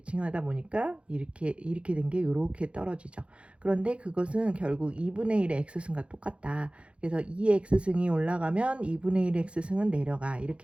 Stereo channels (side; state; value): left; late; 0.059 ms